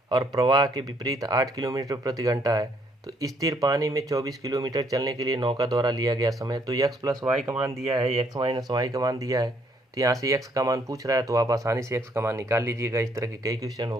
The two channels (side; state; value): both; normal; correlation 0.68